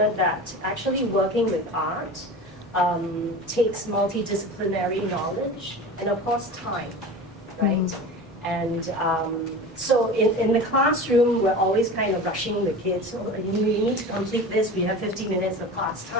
that actually working with art takes multidisciplinary knowledge and of course time, right? And so in the classroom, we're always kind of rushing the kids. Oh, you need to complete this. We have 50 minutes of class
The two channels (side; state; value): both; normal; correlation 0.33